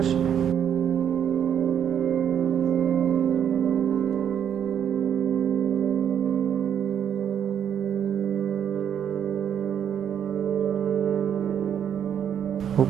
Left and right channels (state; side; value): quieter; left; 8.8 dB